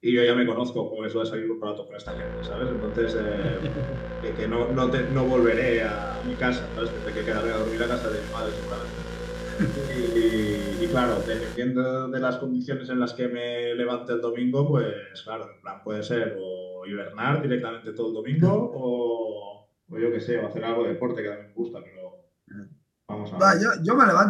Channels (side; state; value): both; identical; correlation 1.00